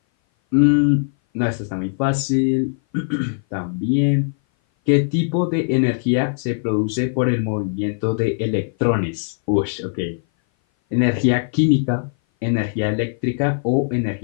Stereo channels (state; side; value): silent; right; 58 dB below the other